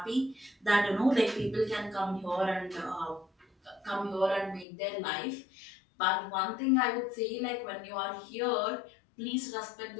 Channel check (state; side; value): drops out; right; at 4.7 s